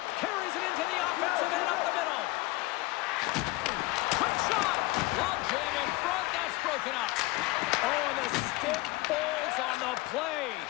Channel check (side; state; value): right; quieter; 21.0 dB